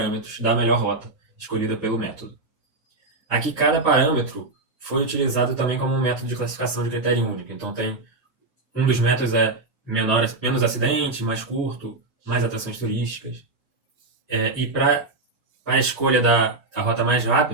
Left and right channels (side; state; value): left; quieter; 3.2 dB